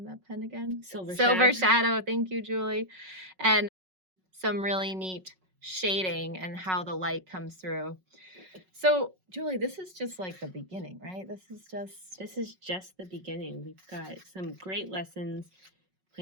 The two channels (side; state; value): left; late; 5.4 ms